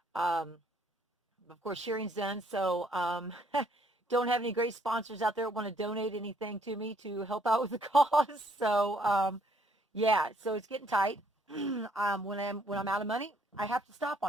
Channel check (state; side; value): normal; both; correlation 0.66